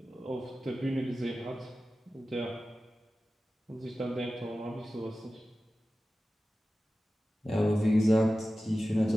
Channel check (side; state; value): both; normal; correlation 0.95